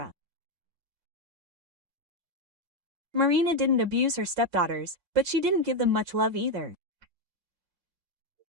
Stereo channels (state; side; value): late; left; 5.6 ms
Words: Marina didn't abuse her stepdaughters, but she didn't give them much love either.